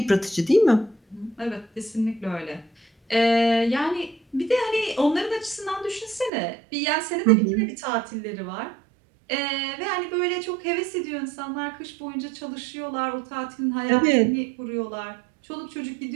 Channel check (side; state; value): left; drops out; at 6.3 s